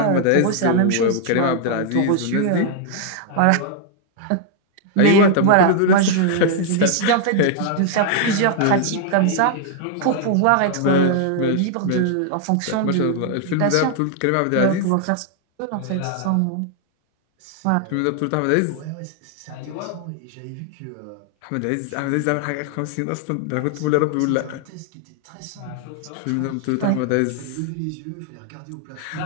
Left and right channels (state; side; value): different; both; correlation 0.00